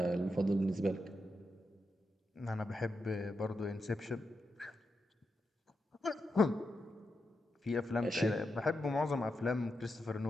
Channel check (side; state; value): both; normal; correlation 0.86